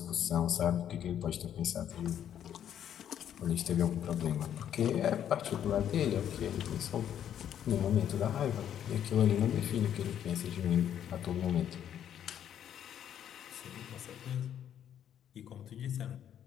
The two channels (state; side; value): quieter; right; 9.9 dB